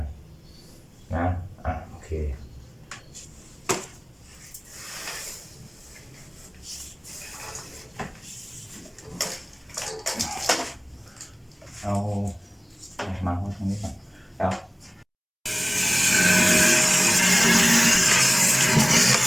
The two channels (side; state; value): both; identical; correlation 1.00